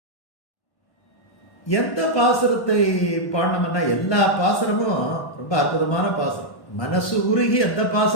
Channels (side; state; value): right; late; 1.1 ms